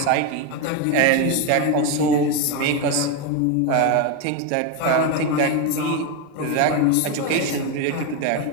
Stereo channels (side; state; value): both; different; correlation 0.03